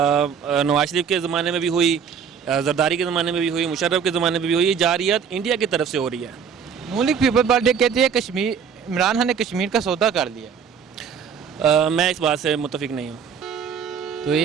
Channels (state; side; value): quieter; left; 7.0 dB